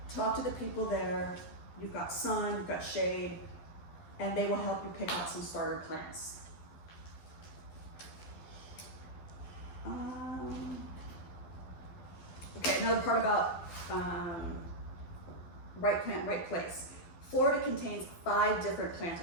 Talk to the people there. You've got sun, you've got shade, and they will help you pick out some starter plants. Okay, another part about right plant, right place. Florida contains 5 different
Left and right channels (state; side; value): late; right; 12 ms